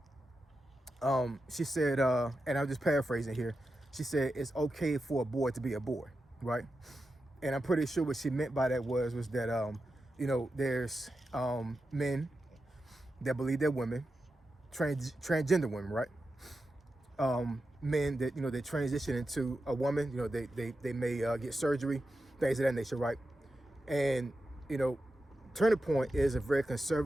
She said, and I'm just paraphrasing here. She said it's okay for a boy to be a boy, right? And I'm pretty sure what she meant by that was that you know, there's men that believe they're women, transgender women, right? Men that, you know, they transition into a woman. You know, they may get surgery, things of that nature, right? And you know, Turning Point is a very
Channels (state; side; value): normal; both; correlation 0.90